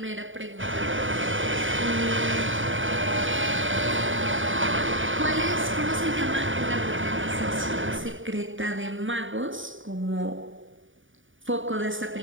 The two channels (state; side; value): late; left; 0.57 ms